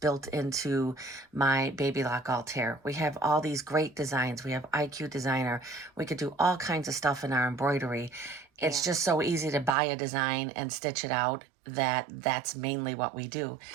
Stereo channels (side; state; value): left; drops out; at 9.8 s